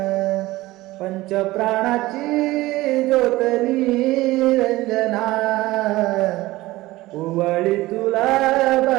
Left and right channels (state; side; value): quieter; left; 18.5 dB